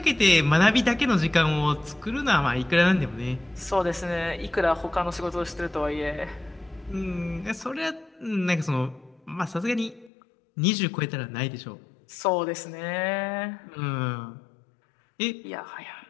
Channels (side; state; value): right; drops out; at 10.1 s